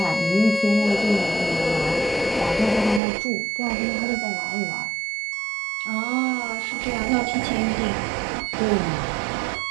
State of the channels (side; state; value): left; drops out; at 3.0 s